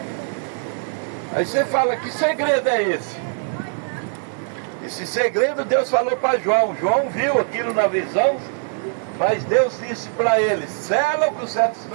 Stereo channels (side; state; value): left; silent; 58 dB below the other